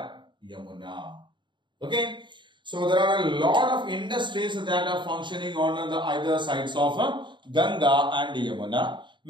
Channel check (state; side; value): late; left; 0.23 ms